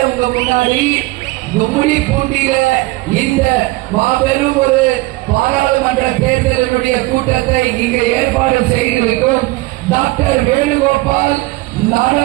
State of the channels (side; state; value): left; quieter; 21.4 dB